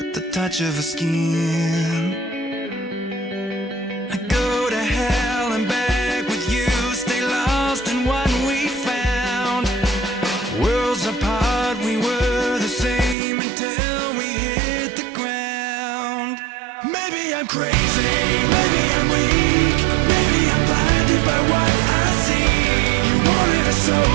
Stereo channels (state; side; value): drops out; left; at 13.2 s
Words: the touch of her skin. I go to hell and back with you, stay lost in what we found. Worlds apart, we were the same until we hit the ground. Maybe I'm crazy, maybe I'm weak, maybe I'm blinded by what I see. You wanted a